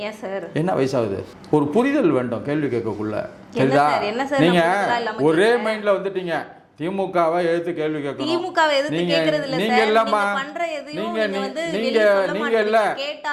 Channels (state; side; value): identical; both; correlation 1.00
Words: என்ன வயசாகுது? ஒரு புரிதல் வேண்டும் கேள்வி கேட்கக்குள்ள. சரிதா? நீங்க ஒரே மைண்ட்ல வந்துட்டீங்க. திமுகவை எதிர்த்து கேள்வி கேட்கணும். நீங்க இல்லம்மா,